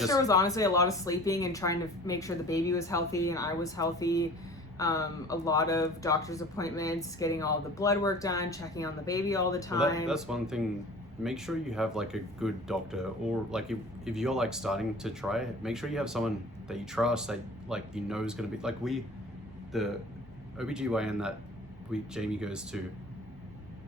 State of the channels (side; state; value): both; normal; correlation 0.44